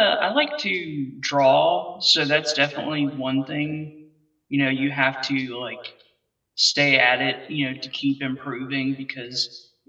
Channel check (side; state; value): both; identical; correlation 1.00